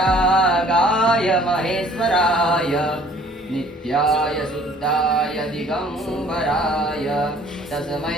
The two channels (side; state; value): both; normal; correlation 0.55